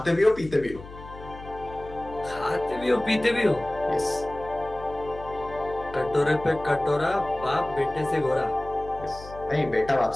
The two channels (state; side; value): noise; left; hum, 15 dB below the sound